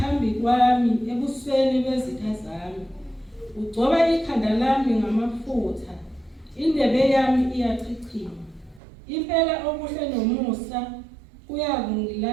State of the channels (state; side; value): drops out; left; at 8.8 s